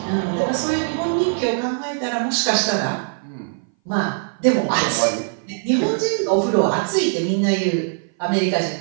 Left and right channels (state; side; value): silent; left; 59 dB below the other